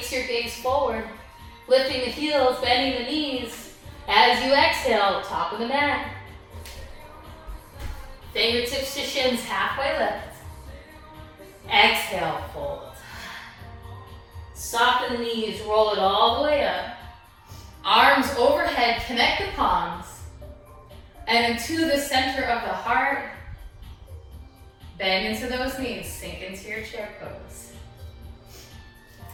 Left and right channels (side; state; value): both; identical; correlation 1.00